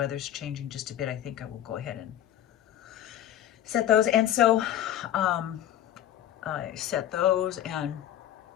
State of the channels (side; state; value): right; quieter; 11.6 dB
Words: changing just a bit, I think I will go ahead and set those. And so I set those, and I'm